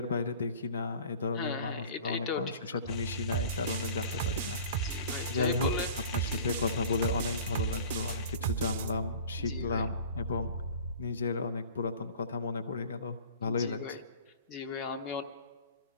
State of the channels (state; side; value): inverted; both; correlation -0.44